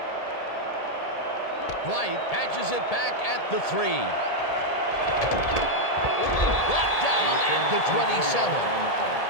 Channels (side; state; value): right; late; 1.8 ms